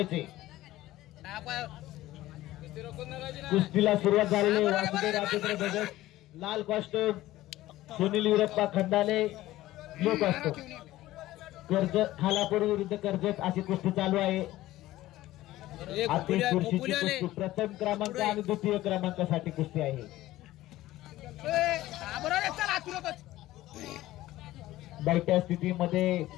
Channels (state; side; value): quieter; right; 16.0 dB